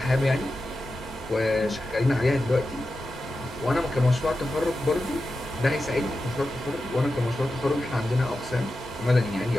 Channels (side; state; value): both; normal; correlation 0.91